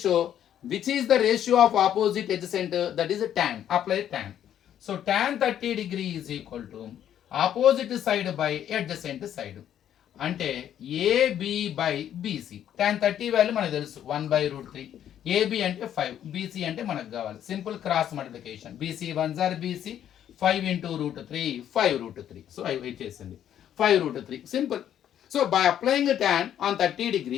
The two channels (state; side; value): quieter; right; 10.4 dB